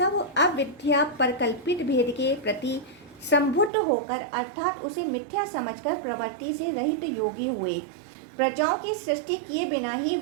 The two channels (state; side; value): drops out; left; at 3.7 s